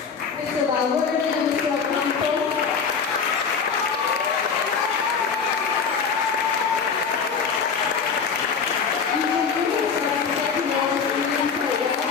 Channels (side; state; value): right; quieter; 6.0 dB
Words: Mr. Valverde, and Mr. Ocampo.